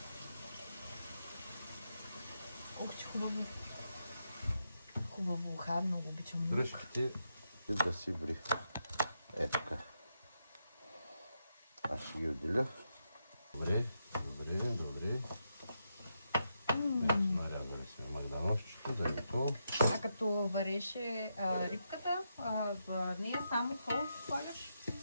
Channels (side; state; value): both; inverted; correlation -0.83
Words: Ух, че хубаво. Хубаво уха, много обичам лук. Дръжките и да си ври. Е така. Аз ще ги отделя. Добре. Нарязали сме магданозчето, да е готово. А като вареше рибката, в нея само сол слагаш?